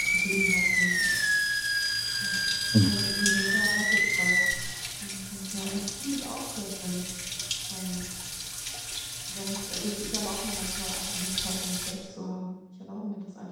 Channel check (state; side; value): identical; both; correlation 1.00